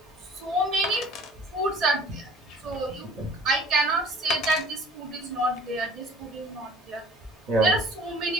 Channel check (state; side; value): normal; both; correlation 0.48